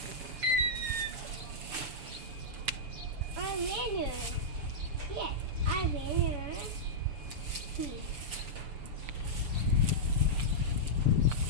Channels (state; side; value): late; left; 6.9 ms